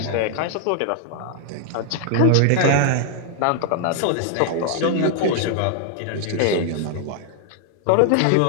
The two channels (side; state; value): both; different; correlation 0.00